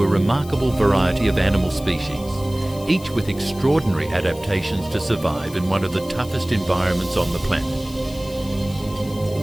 a remarkable variety of animal species, each with extraordinary adaptations to survive in one of the toughest environments on the planet.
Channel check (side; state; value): left; noise; hiss, 19 dB below the sound